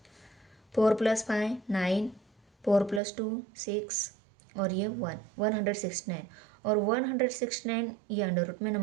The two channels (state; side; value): drops out; left; at 3.0 s